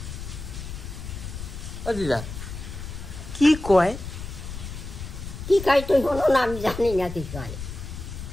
ও দিদা কি কয়? কি কয় তুই হলো না, আমি জানি না কি কয়।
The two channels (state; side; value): noise; left; rumble, 9 dB below the sound